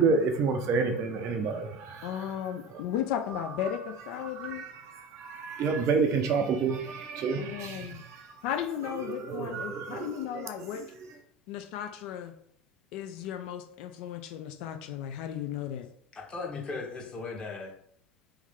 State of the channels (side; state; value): both; normal; correlation 0.31